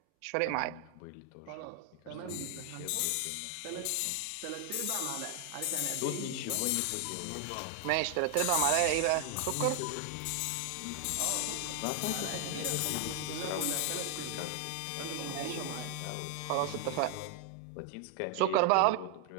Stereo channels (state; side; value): different; both; correlation 0.00